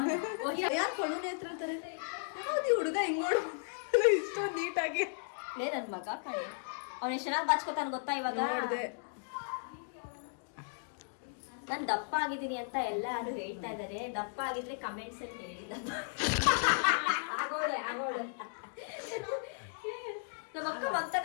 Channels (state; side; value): silent; right; digital silence